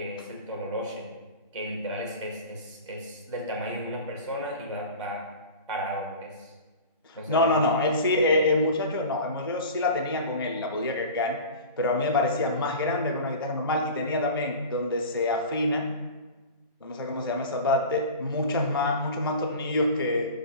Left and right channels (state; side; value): inverted; both; correlation -0.35